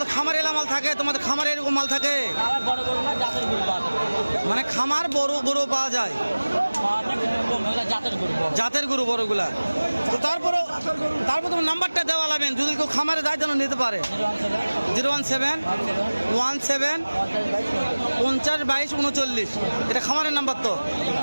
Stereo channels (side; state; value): both; inverted; correlation -1.00